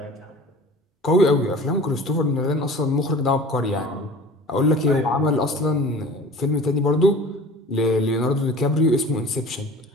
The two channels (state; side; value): normal; both; correlation 0.41